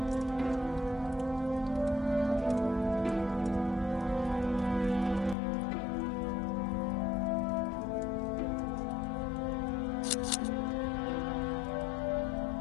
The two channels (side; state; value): right; drops out; at 5.4 s